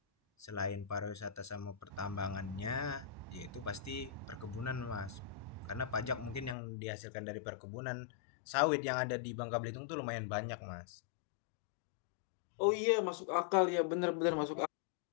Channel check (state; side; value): drops out; right; at 6.6 s